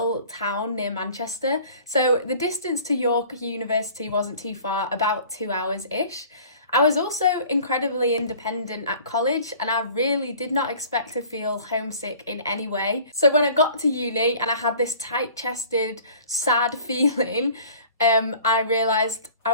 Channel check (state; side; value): inverted; both; correlation -0.48